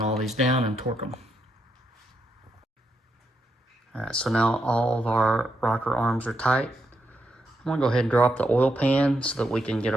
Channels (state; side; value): normal; both; correlation 0.81